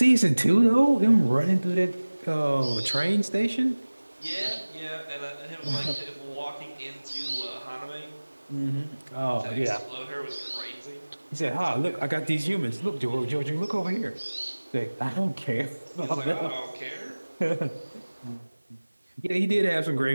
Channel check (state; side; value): inverted; both; correlation -1.00